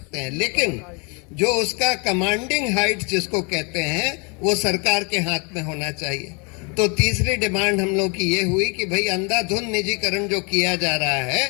हैं, लेकिन जो उसका कमांडिंग हाइट जिसको कहते हैं वो सरकार के हाथ में होना चाहिए। तो तीसरी डिमांड हम लोग की ये हुई कि भाई अंधाधुंध निजीकरण जो किया जा रहा है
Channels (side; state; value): right; quieter; 32.5 dB